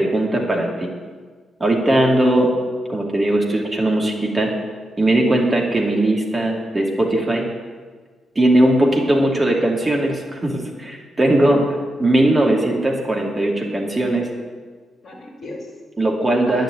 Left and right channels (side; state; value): both; normal; correlation 0.88